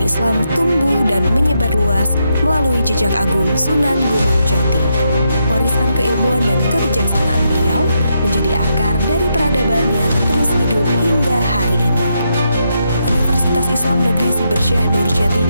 tumbuh dan menyebar luas melalui jejak agung Sunan Gunung Jati. Warisan keilmuan dan kebijaksanaan beliau menjadi akar dari peradaban yang terus hidup hingga hari ini. Universitas Islam Negeri Siber Syekh Nurjati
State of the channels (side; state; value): both; inverted; correlation -0.81